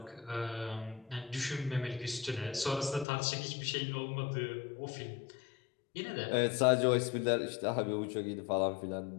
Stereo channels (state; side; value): drops out; right; at 3.1 s